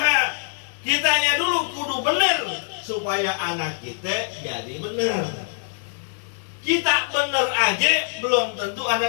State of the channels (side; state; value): right; silent; 63 dB below the other